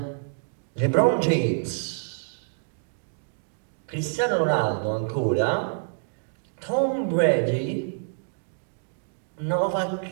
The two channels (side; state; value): left; silent; digital silence